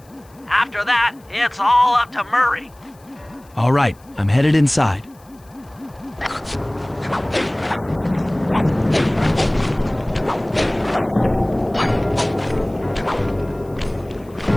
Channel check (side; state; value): left; noise; hiss, 30 dB below the sound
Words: After that, it's all up to Murray. All right, I'm headed inside.